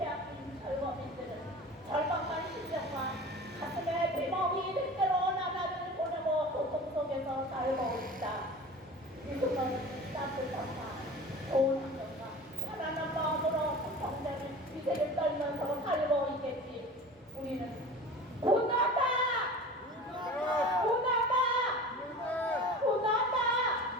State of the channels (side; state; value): both; normal; correlation 0.37